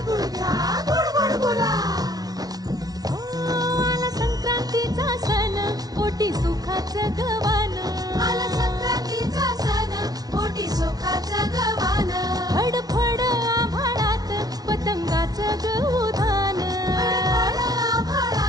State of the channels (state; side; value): late; left; 0.19 ms